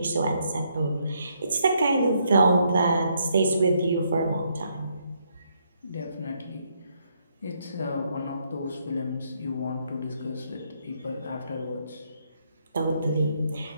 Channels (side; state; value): both; inverted; correlation -0.74